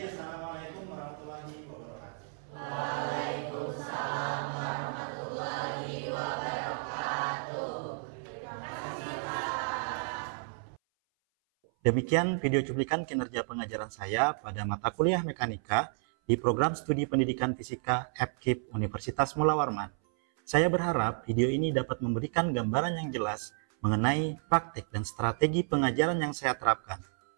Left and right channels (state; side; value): silent; left; 57 dB below the other